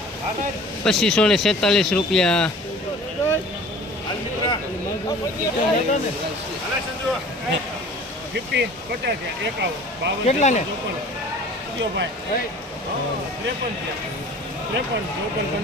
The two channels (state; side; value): normal; both; correlation 0.45